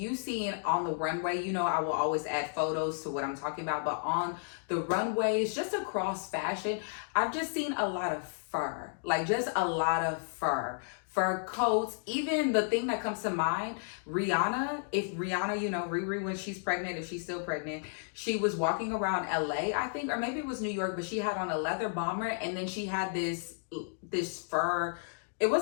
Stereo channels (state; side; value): silent; right; digital silence